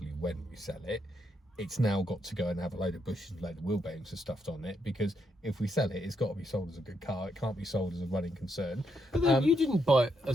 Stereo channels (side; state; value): both; normal; correlation 0.79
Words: when we sell it, it's now got to go and have a load of bushes and a load of wheel bearings and stuff on it, because if we sell it, it's got to be sold as a good car. It can't be sold as a running concern. But then you didn't buy it